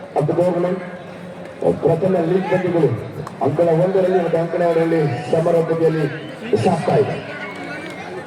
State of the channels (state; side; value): identical; both; correlation 1.00